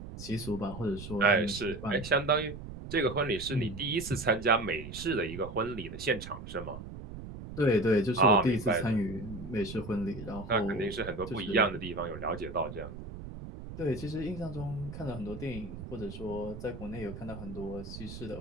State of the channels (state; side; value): noise; right; rumble, 11 dB below the sound